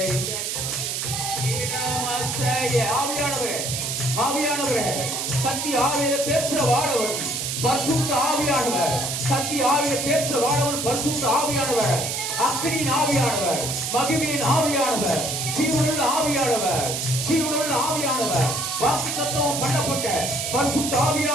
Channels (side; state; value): right; noise; hiss, 2 dB below the sound